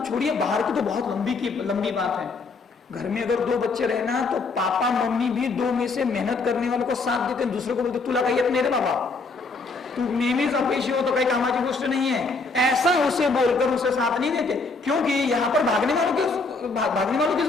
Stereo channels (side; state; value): right; quieter; 3.9 dB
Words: छोड़िए, बाहर की तो बहुत लंबी बात है। घर में अगर 2 बच्चे रहना, तो पापा मम्मी भी 2 में से मेहनत करने वालों को साथ देते हैं, दूसरे को बोलते तुला काही येत नाही रे बाबा, तू नेहमीच अपयशी हो तो काही कामाची गोष्ट नहीं है, ऐसा उसे बोलकर उसे साथ नहीं देते। क्योंकि यहाँ पर भागने वालों की